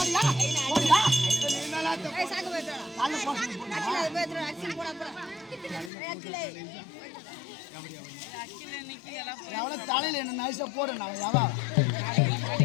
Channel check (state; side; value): drops out; right; at 5.9 s